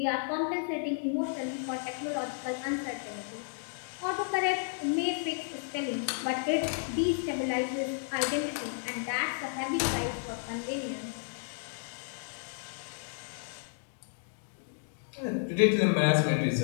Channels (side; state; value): right; silent; digital silence